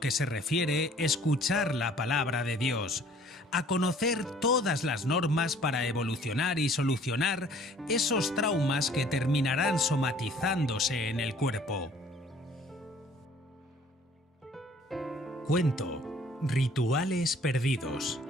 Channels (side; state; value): both; normal; correlation 0.55